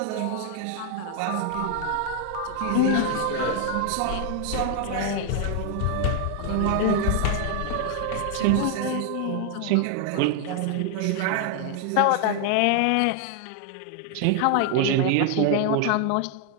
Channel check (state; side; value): different; both; correlation 0.00